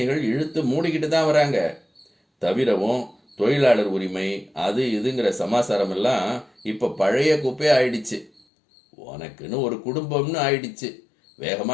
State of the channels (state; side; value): drops out; right; at 8.4 s